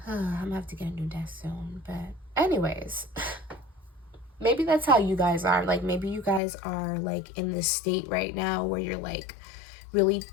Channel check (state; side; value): drops out; right; at 6.4 s